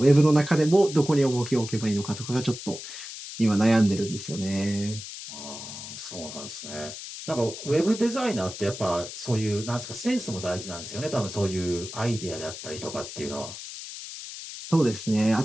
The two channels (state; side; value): noise; left; hiss, 10 dB below the sound